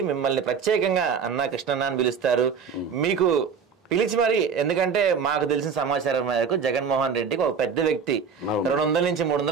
మిమ్మల్ని ప్రత్యేకంగా అన్నా కృష్ణన్న అని పిలుస్తారు. మీకు పిలిచి మరి, ఎందుకంటే మాకు తెలిసిన సమాచారం మేరకు జగన్మోహన్ రెడ్డికి ఒక పెద్ద వ్యక్తి 200 నుంచి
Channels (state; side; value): quieter; left; 6.3 dB